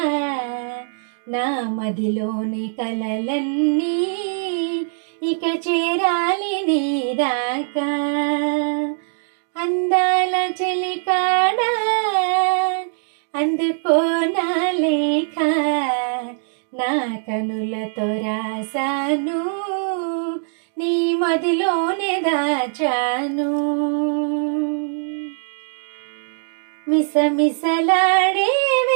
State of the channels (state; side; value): silent; left; digital silence